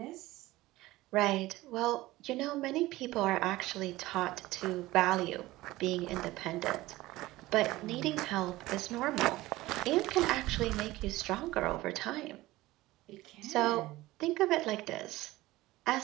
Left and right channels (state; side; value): quieter; left; 18.2 dB